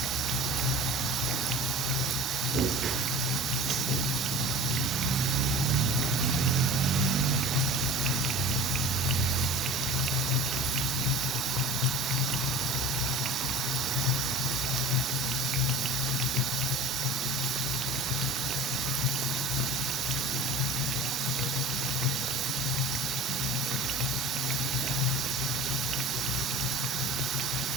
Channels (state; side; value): normal; both; correlation 0.38